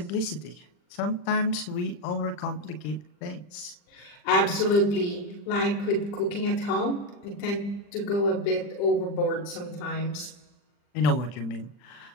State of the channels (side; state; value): right; late; 40 ms